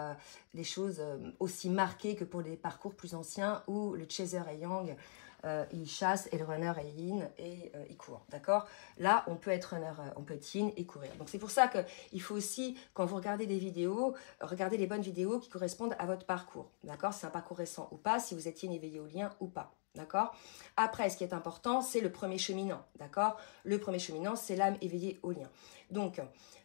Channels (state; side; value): silent; right; digital silence